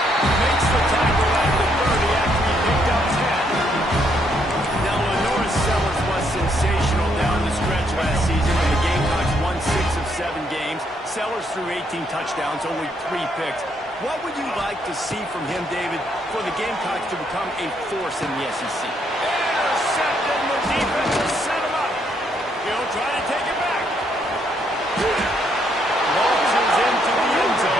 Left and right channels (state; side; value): normal; both; correlation 0.73